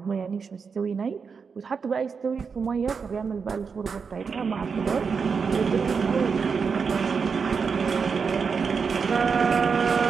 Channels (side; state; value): left; quieter; 5.6 dB